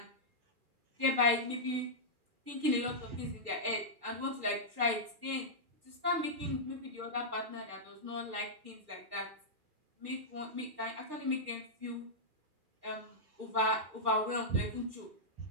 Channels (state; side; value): late; left; 2.4 ms